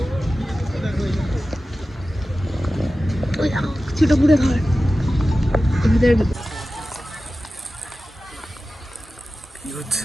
ওই ছোট পুরে ঘর ওদের।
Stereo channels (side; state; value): both; normal; correlation 0.95